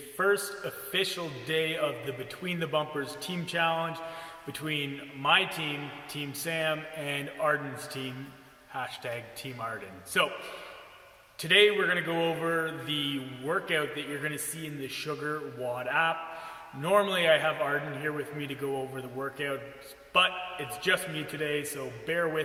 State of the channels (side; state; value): both; identical; correlation 1.00